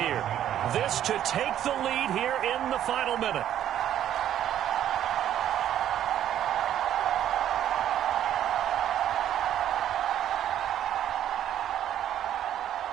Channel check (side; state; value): left; quieter; 11.0 dB